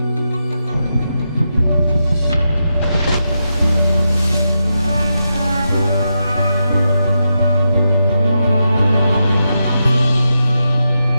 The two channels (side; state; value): both; inverted; correlation -0.86